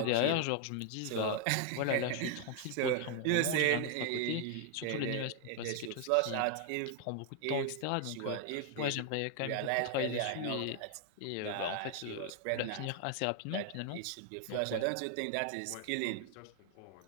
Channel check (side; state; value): both; different; correlation 0.00